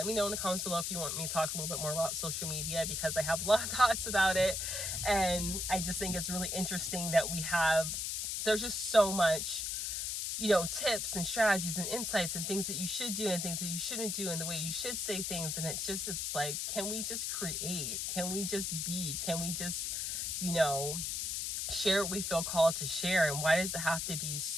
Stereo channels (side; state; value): left; noise; hiss, 1 dB below the sound